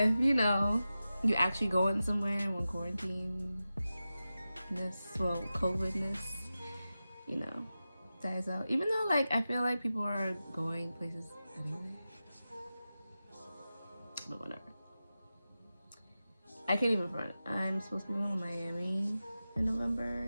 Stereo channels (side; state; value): both; inverted; correlation -0.94